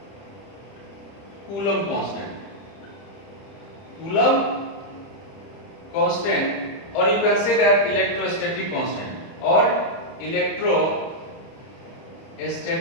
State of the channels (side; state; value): right; late; 30 ms